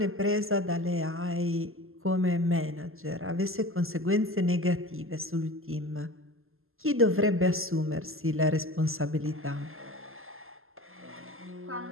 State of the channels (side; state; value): left; late; 0.61 ms